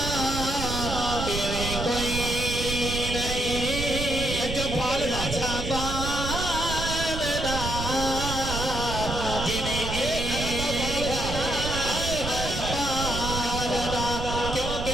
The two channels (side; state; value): right; noise; rumble, 5 dB below the sound